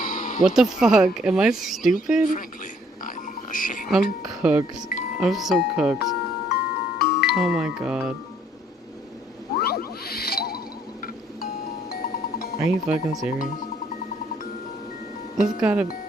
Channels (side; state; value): both; normal; correlation 0.64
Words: What the fuck? Am I stupid? Frankly, I'm ashamed. I'm cooked. I'm so cooked. Oh my god. Are you fucking serious? This gotta...